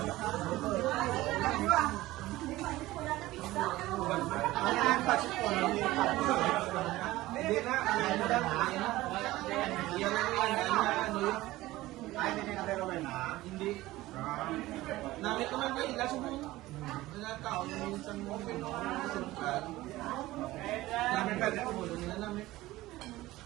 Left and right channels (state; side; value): quieter; left; 17.5 dB